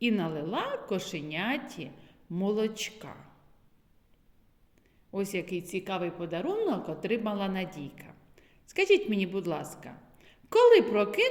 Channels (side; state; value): both; identical; correlation 1.00